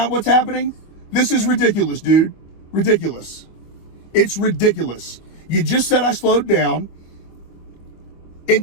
what's happening? This is ridiculous, dude. Ridiculous. It's ridiculous. You just said I slowed down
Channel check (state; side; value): late; right; 25 ms